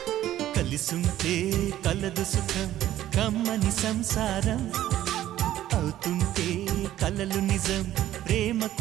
కలిసుంటే కలదు సుఖం కమ్మని సంసారం అవుతుంటే కలలు నిజం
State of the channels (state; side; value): quieter; left; 13.1 dB